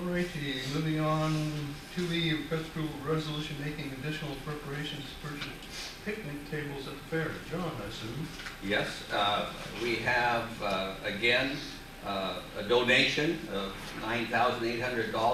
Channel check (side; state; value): both; identical; correlation 1.00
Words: righty, moving on, 2E, request approval resolution making additional appropriations to purchase picnic tables at the fair. John, I assume? Yes, we have, again, a donation of